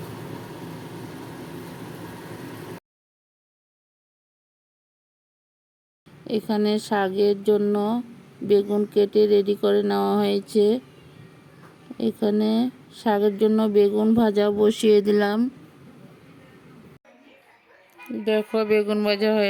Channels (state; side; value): identical; both; correlation 1.00